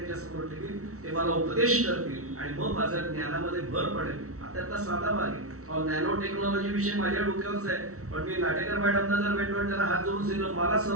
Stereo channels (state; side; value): late; left; 0.64 ms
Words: समोर ठेवीन. ते मला उपदेश करतील आणि मग माझ्या ज्ञानामध्ये भर पडेल. त्यातला साधा भाग आहे. नॅनो टेक्नॉलॉजी विषय माझ्या डोक्यावरच आहे, पण मी नाटेकर मॅडमना जर भेटलो त्यांना हात जोडून सांगितलं मला